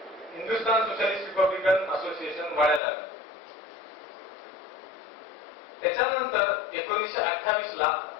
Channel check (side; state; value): right; drops out; at 2.8 s